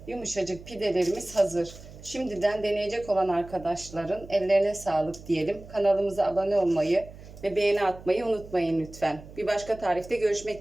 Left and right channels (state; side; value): noise; right; hum, 17 dB below the sound